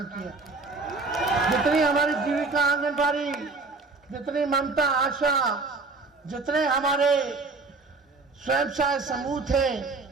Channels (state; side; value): quieter; left; 3.7 dB